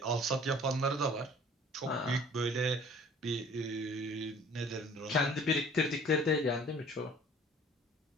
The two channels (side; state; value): both; normal; correlation 0.51